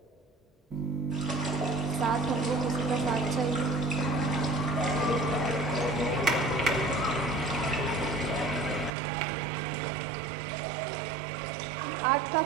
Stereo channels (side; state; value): left; drops out; at 8.9 s